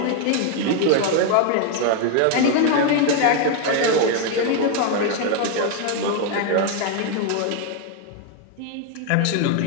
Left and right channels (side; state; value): both; different; correlation 0.01